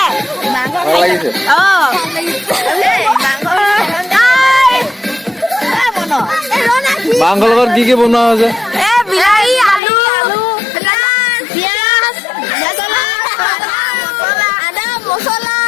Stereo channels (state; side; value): drops out; right; at 9.8 s